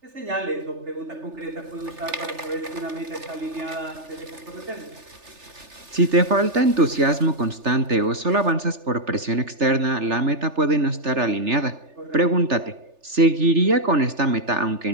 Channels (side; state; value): left; late; 3.3 ms